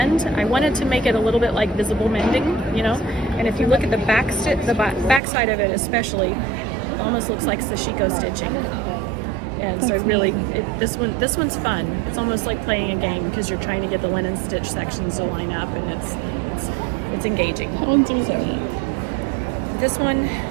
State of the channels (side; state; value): left; drops out; at 5.2 s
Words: I wanted to make it a little bit like visible mending, you know. And if you look at the back side of it, especially, it almost looks like sashiko stitching. And so this one's fun. It's almost like playing a game because you're trying to get the linen stitch sections to line up, and it's engaging. That one's resilient. This one